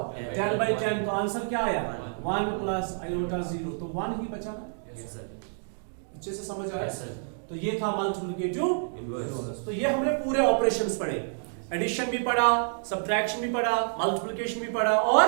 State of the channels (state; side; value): silent; left; digital silence